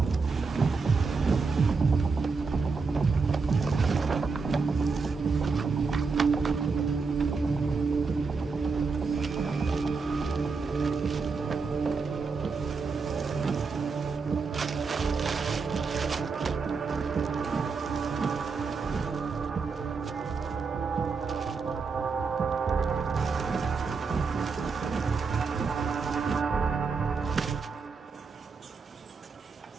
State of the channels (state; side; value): quieter; left; 4.7 dB